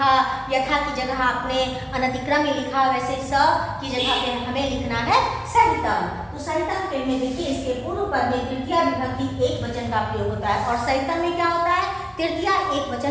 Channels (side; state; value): both; identical; correlation 1.00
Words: यथा की जगह आपने अनतिक्रम में लिखा, वैसे स की जगह पे हमें लिखना है सहितम। तो सहितम के में देखिए इसके पूर्व पद में तृतीय विभक्ति एक वचन का प्रयोग होता है, और सहितम में क्या होता है? तृतीय एक